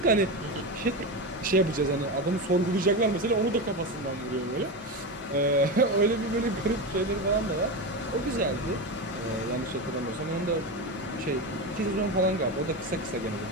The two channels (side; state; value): both; normal; correlation 0.18